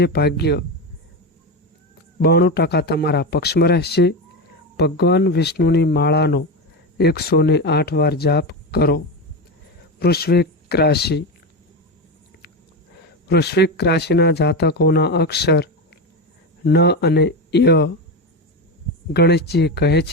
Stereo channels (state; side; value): normal; both; correlation 0.17